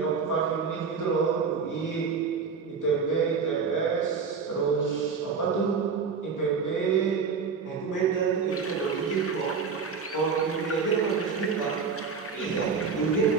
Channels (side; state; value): left; quieter; 5.6 dB